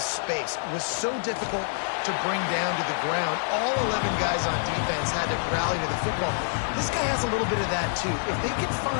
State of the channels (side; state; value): right; silent; digital silence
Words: was so difficult to bring down to the ground. All 11 guys on defense had to rally to the football. This guy has a little bit of that too. If they can